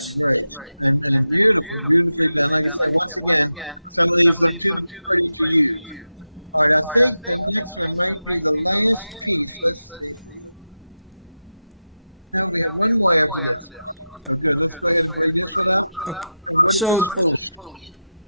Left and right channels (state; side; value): inverted; both; correlation -0.90